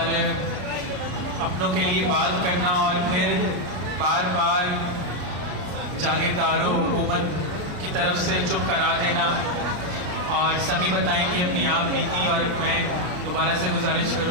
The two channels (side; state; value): left; late; 34 ms